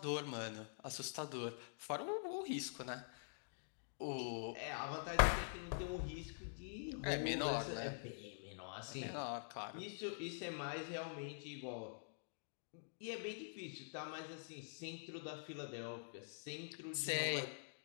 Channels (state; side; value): silent; right; digital silence